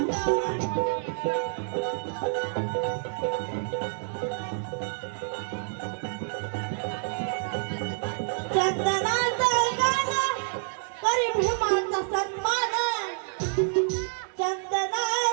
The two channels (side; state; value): left; silent; digital silence